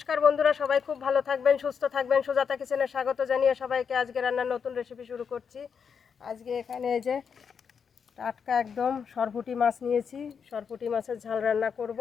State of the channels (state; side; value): quieter; right; 6.6 dB